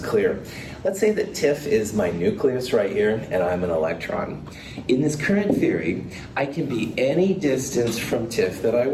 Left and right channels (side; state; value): both; identical; correlation 1.00